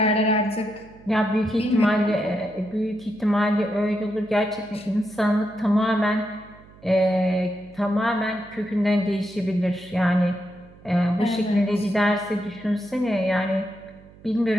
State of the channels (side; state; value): right; noise; hum, 23 dB below the sound